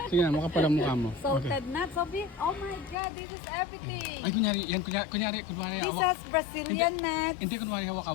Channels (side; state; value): right; drops out; at 3.0 s